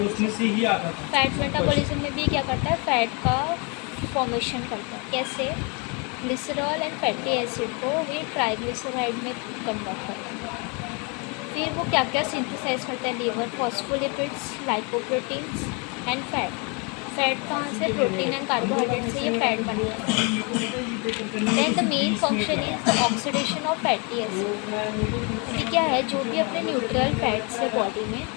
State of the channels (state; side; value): quieter; right; 32.5 dB